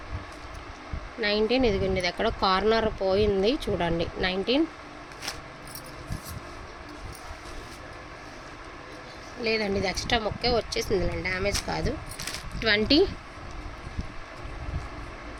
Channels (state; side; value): identical; both; correlation 1.00